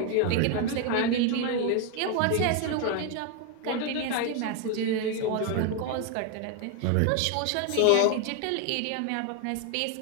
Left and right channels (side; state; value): both; different; correlation 0.01